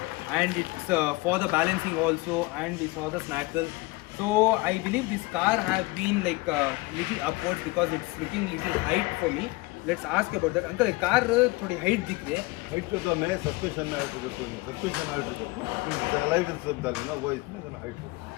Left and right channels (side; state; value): right; quieter; 23.1 dB